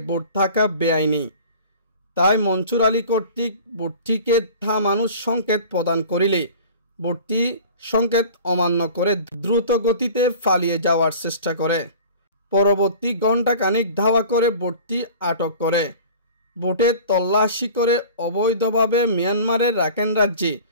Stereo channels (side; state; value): both; inverted; correlation -0.42